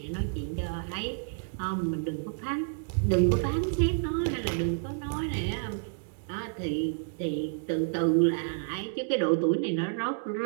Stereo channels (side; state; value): left; silent; digital silence